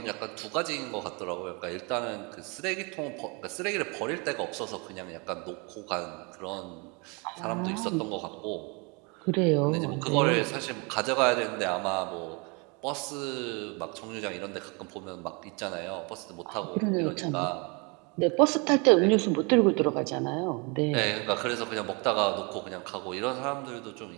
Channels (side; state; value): left; quieter; 30.9 dB